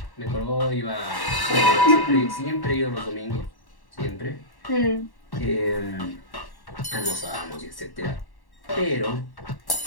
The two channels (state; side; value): late; right; 1.1 ms